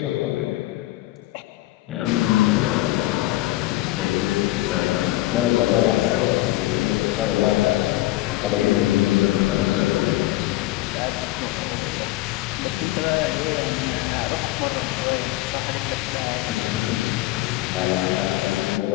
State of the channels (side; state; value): right; quieter; 17.1 dB